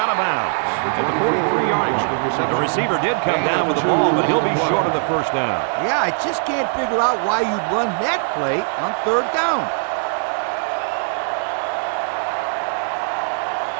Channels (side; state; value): left; silent; 61 dB below the other